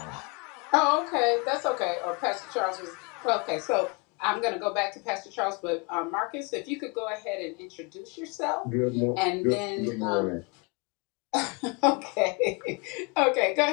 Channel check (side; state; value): right; quieter; 30.4 dB